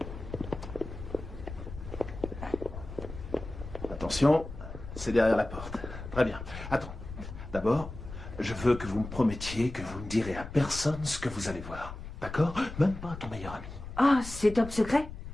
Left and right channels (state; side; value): noise; left; rumble, 11 dB below the sound